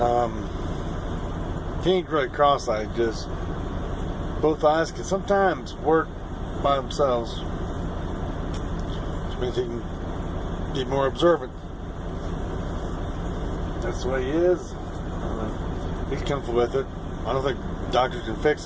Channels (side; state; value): both; identical; correlation 1.00